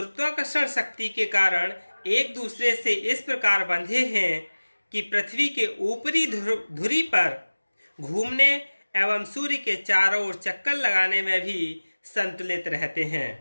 शक्ति के कारण एक दूसरे से इस प्रकार बंधे हैं कि पृथ्वी के ऊपरी धुरी पर घूमने एवं सूर्य के चारों ओर चक्कर लगाने में भी संतुलित रहते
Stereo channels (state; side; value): inverted; both; correlation -1.00